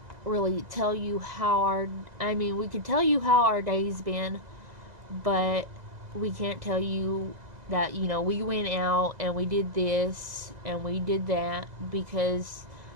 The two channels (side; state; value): left; late; 2.0 ms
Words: really tell you how we could tell you how our day's been, but we can't tell you that, you know, we went out and we did this and we did that, because